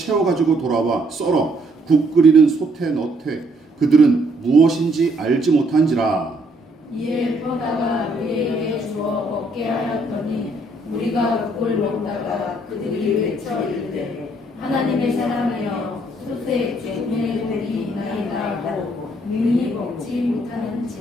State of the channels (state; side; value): normal; both; correlation 0.68